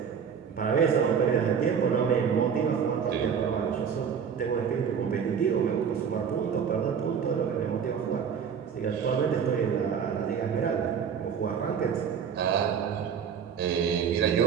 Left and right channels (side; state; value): left; quieter; 7.2 dB